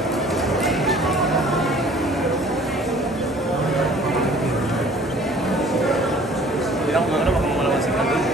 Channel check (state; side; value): normal; both; correlation 0.52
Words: Hindi lang kung ano, baka malaman sila doon.